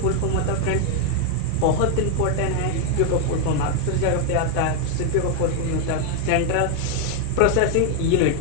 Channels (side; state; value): both; different; correlation 0.01